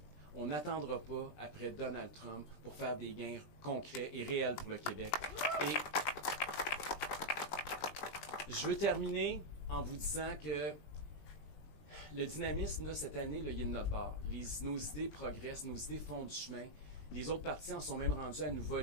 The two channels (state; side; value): late; right; 20 ms